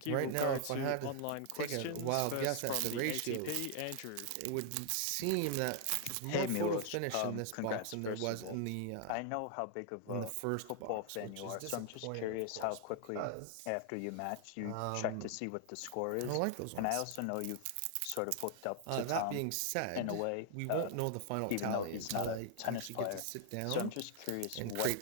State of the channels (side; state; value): both; different; correlation 0.00